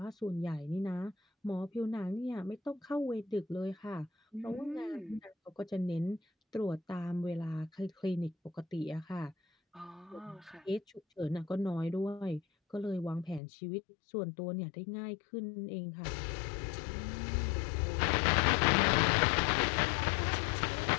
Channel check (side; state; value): right; drops out; at 13.4 s